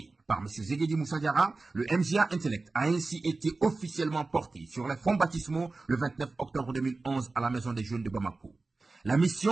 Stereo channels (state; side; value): quieter; left; 3.6 dB